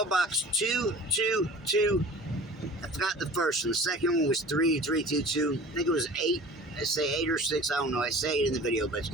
222. I forgot the first one. The second one was 3322. I think it was 8. I say 8 or 6. I don't know. I say it in the video, but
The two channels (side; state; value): both; normal; correlation 0.42